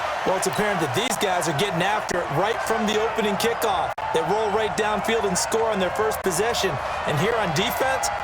Well, it's apparent that these guys are getting after it right from the opening kickoff. They roll right downfield and score on their first possession. And here on defense,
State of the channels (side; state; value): both; identical; correlation 1.00